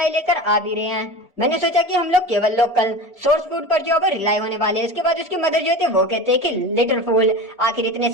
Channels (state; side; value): normal; both; correlation 0.30